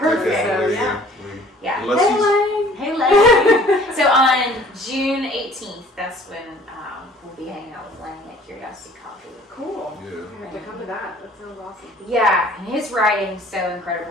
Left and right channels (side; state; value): both; normal; correlation 0.52